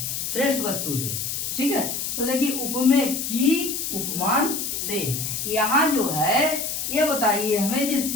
श्रेष्ठ वस्तु से। ठीक है, तो देखिए उपमेय की उपमान से। यहाँ जो है ये बताइए हमें, जो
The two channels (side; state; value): left; noise; hiss, 3 dB below the sound